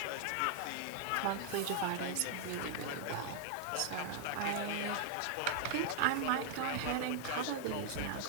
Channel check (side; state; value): both; different; correlation 0.00